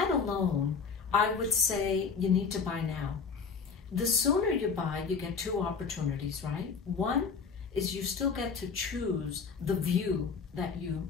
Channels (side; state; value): right; quieter; 5.5 dB